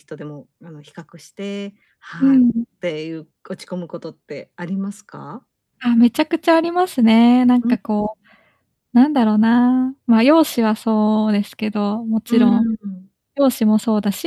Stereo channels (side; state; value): both; identical; correlation 1.00